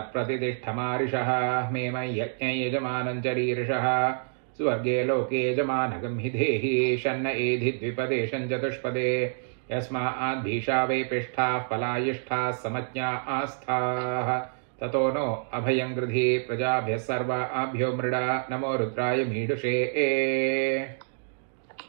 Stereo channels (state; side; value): silent; left; digital silence